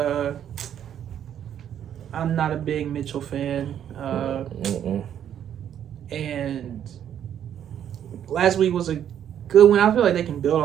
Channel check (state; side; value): quieter; left; 9.8 dB